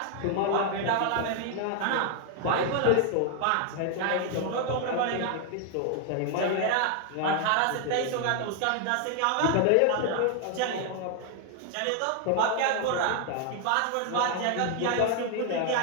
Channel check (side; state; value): both; different; correlation 0.00